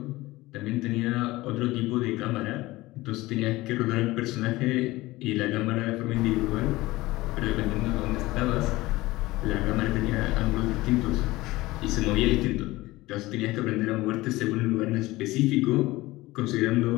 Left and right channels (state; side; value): quieter; right; 19.2 dB